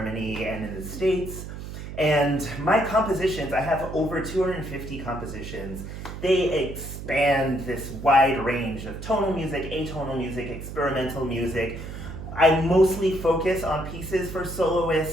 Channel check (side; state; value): right; noise; hum, 9 dB below the sound